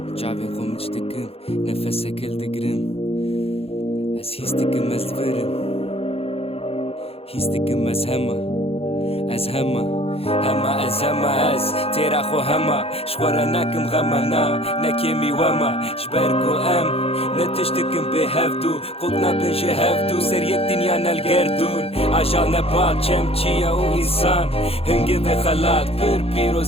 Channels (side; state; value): right; late; 0.28 ms